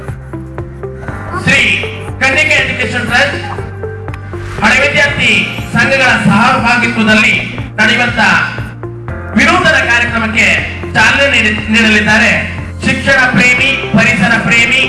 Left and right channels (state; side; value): identical; both; correlation 1.00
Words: ಶ್ರೀ ಕನ್ನಿಕೆ ಎಜುಕೇಶನ್ ಟ್ರಸ್ಟ್ ಹಳೆ ವಿದ್ಯಾರ್ಥಿ ಸಂಘಗಳ ಸಹಭಾಗಿತ್ವದಲ್ಲಿ ನಡೆಯುವಂತ ವಿನೂತನ ಕಾರ್ಯಕ್ರಮಕ್ಕೆ ಚಾಲನೆ ನೀಡಲಿದ್ದಾರೆ. ಶಿಕ್ಷಣ ಪ್ರೇಮಿ, ಪರಿಸರ ಪ್ರೇಮಿ,